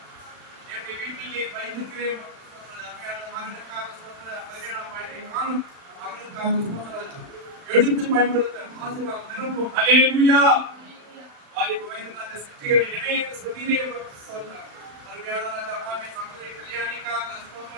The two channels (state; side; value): late; left; 35 ms